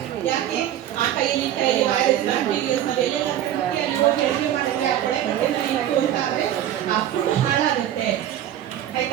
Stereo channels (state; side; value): quieter; left; 11.6 dB